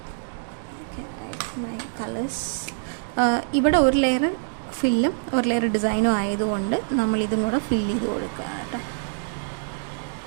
ഓക്കെ, കളേഴ്സ് ഇവിടെ ഒരു ലെയർ ഫില്ലും ഒരു ലെയർ ഡിസൈനും ആയതുകൊണ്ട് നമ്മളിതും കൂടെ ഫില്ല് ചെയ്ത് കൊടുക്കുക കേട്ടോ.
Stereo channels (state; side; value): silent; left; digital silence